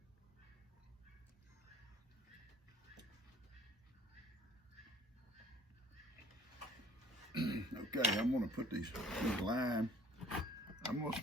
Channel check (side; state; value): both; normal; correlation 0.56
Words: Okay, I'm going to put these lime. I'm going